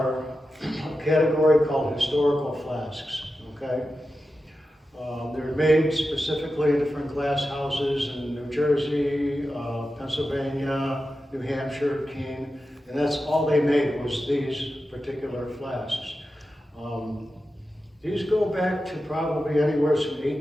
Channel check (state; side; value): normal; both; correlation 0.92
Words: a category called historical flasks, okay? They're made specifically in different glass houses in New Jersey, Pennsylvania, New Hampshire, Keene, and that's all they made was these particular flasks. These go back to probably anywhere from